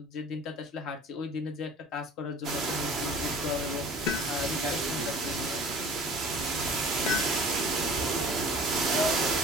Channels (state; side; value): normal; both; correlation 0.46